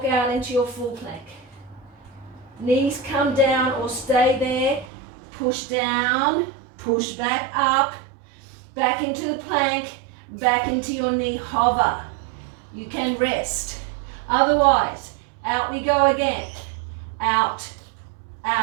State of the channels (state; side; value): drops out; left; at 4.9 s